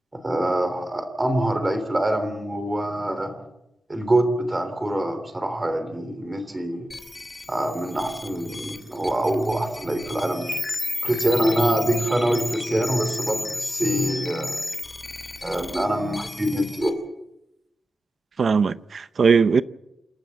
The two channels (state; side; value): normal; both; correlation 0.92